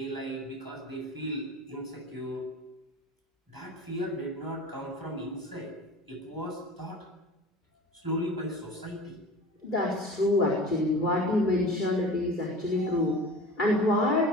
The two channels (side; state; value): both; normal; correlation 0.37